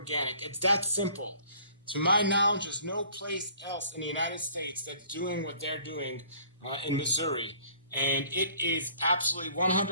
It's that simple. To my knowledge, there's no place else in the United States that's doing what they're doing in Missouri. And it is absolutely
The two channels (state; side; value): inverted; both; correlation -0.55